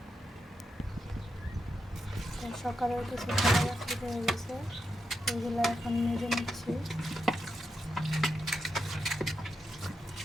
তো সকালের কিছু খাবার বাকি হয়ে গেছে, ওইগুলো এখন মেজে নিচ্ছি।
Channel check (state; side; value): normal; both; correlation 0.86